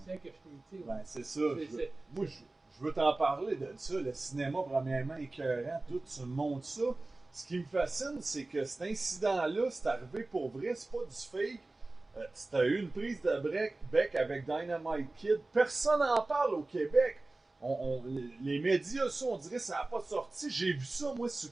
c'est que je t'ai dit. Ben, c'est ça. C'est- Moi, je veux t'en parler de ça. Le cinéma, premièrement, écœurant, tout, tu me montres ça. Ce qui me fascine, c'est que cet incident-là, c'est arrivé pour vrai, c'est pas du fake. Tu as eu une prise de bec avec Dynamite Kid. Personne n'en parle au Québec. Les médias, ça, on dirait que ça n'a pas sorti. J'ai vu ça, moi, sur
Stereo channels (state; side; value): quieter; left; 3.1 dB